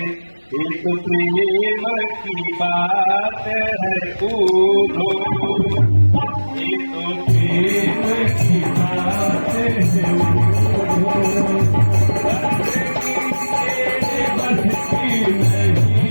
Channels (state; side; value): inverted; both; correlation -1.00